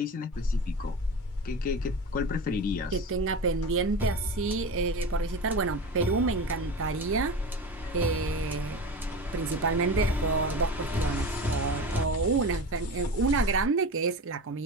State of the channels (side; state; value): both; normal; correlation 0.28